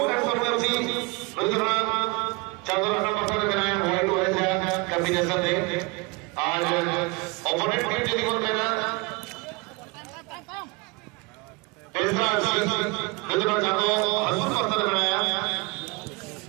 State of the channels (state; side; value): quieter; left; 26.8 dB